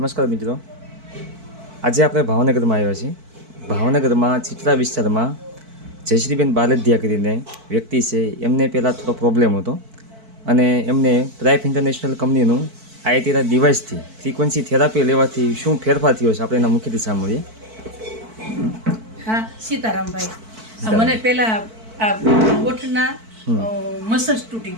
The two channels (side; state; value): left; late; 4.5 ms